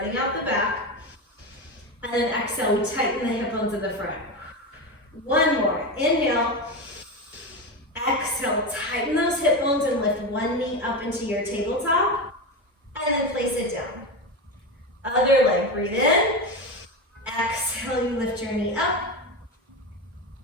out the back. And then exhale, we tighten the hip bones in the front. 1 more. Inhale. Exhale, tighten those hip bones and lift one knee up into your tabletop. And then place it down. Other leg, breathe in. Exhale, you lift your knee up.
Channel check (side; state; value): both; normal; correlation 0.18